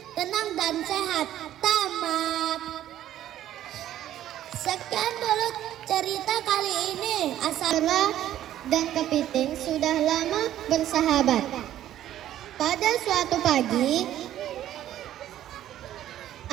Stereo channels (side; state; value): left; quieter; 12.3 dB